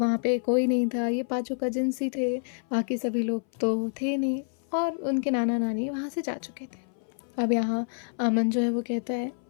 वहाँ पे कोई नहीं था, ये पांचों कजिन्स ही थे, बाकी सभी लोग तो थे नहीं और उनके नाना नानी वहाँ से जा चुके थे। अब यहाँ अमन जो है वो कहता है,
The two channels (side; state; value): right; silent; 58 dB below the other